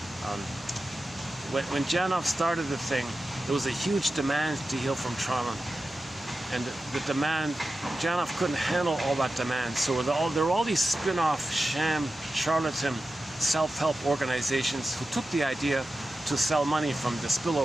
when Janov started the thing, there was a huge demand to heal from trauma. And the demand, Janov couldn't handle all that demand. So there were all these spin-off, sham, charlatan, self-help organizations who took the idea to sell money from the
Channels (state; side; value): normal; both; correlation 0.93